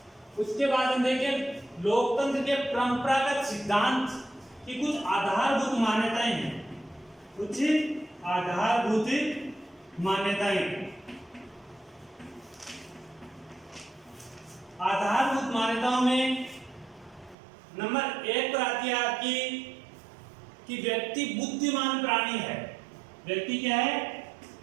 उसके बाद हम देखें लोकतंत्र के परंपरागत सिद्धांत की कुछ आधारभूत मान्यताएं हैं। कुछ आधारभूत मान्यताएं। आधारभूत मान्यताओं में नंबर 1 पर आती है आपकी कि व्यक्ति बुद्धिमान प्राणी है। व्यक्ति क्या है?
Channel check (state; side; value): drops out; left; at 17.4 s